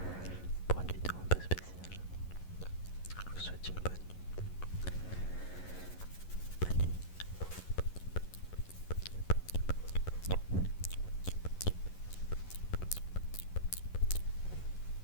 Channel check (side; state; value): right; late; 11 ms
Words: pour une vidéo un peu spéciale. Je vous souhaite une bonne nuit. Bonne nuit. Bonne